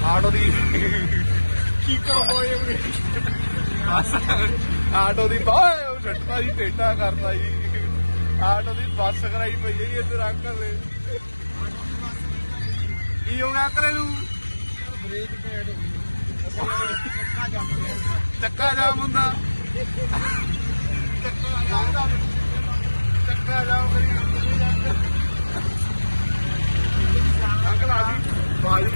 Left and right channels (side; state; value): both; inverted; correlation -1.00